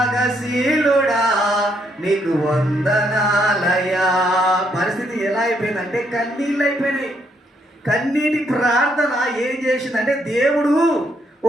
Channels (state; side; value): normal; both; correlation 0.73